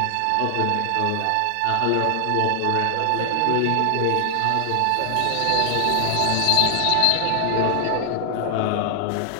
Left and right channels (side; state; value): both; different; correlation 0.00